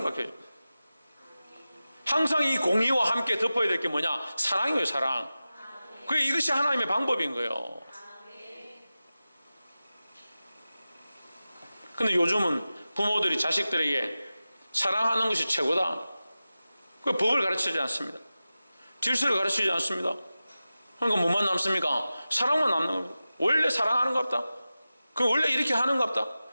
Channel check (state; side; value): inverted; both; correlation -0.95